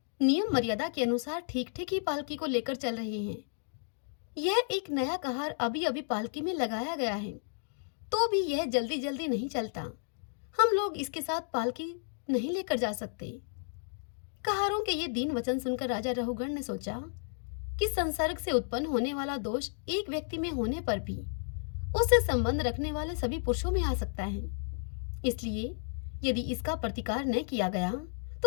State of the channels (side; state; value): right; silent; digital silence